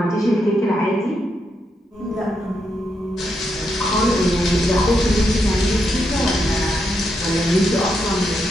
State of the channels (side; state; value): both; normal; correlation 0.81